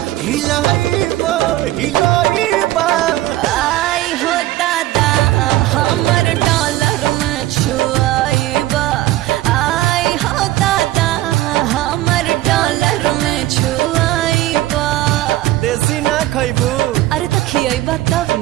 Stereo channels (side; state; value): left; quieter; 15.7 dB